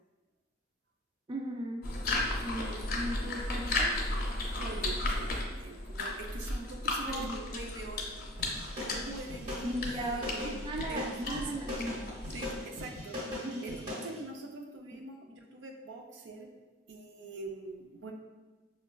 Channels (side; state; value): both; normal; correlation 0.43